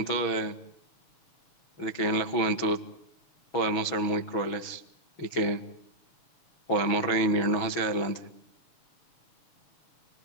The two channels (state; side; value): late; right; 6.2 ms